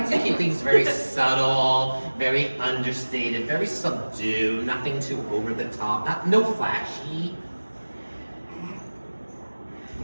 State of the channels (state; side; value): inverted; both; correlation -1.00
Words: to keep things very subtle, very understated, very subdued, nothing too over the top, no flashy.